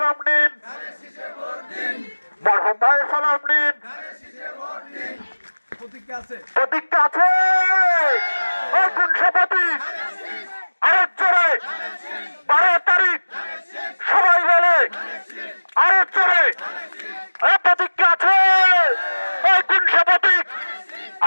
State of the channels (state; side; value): inverted; both; correlation -1.00